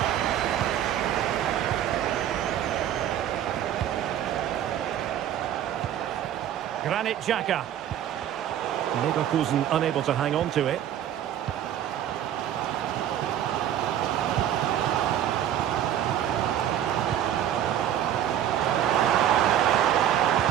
Granit Xhaka. Leverkusen unable to hang on to it.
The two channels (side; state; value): left; quieter; 10.8 dB